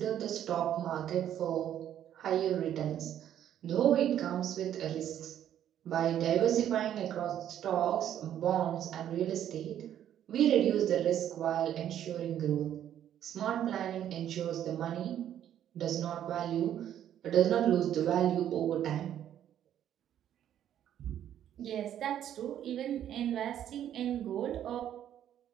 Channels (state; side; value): quieter; left; 10.6 dB